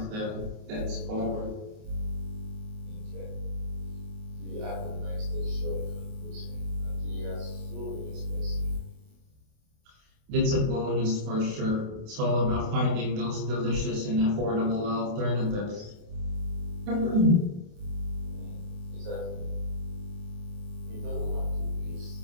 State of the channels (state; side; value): late; left; 28 ms